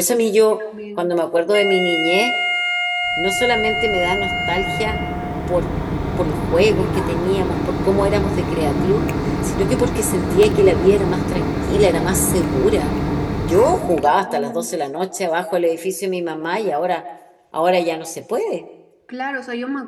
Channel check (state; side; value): identical; both; correlation 1.00